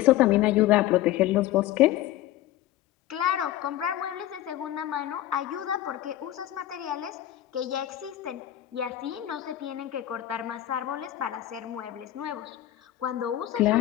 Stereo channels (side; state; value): right; quieter; 13.6 dB